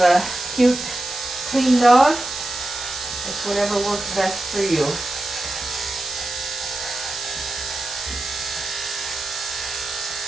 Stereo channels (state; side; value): noise; right; hiss, 7 dB below the sound